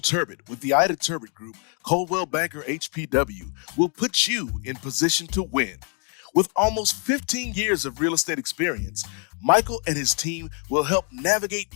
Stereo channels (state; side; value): quieter; right; 39.5 dB